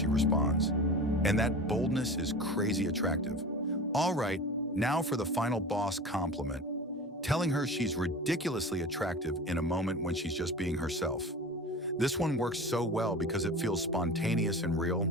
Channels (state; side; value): normal; both; correlation 0.34